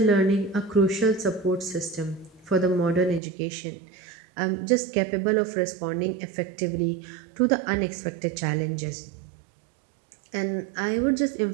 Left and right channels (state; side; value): drops out; left; at 3.2 s